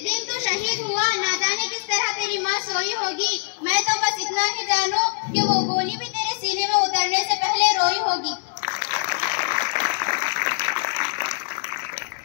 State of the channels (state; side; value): silent; right; 63 dB below the other